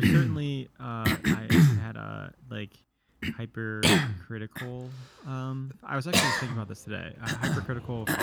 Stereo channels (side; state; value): both; identical; correlation 1.00